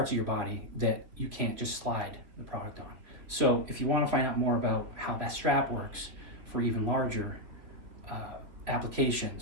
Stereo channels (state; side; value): late; left; 3.2 ms